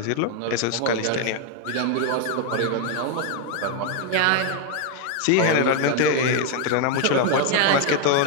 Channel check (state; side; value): different; both; correlation 0.01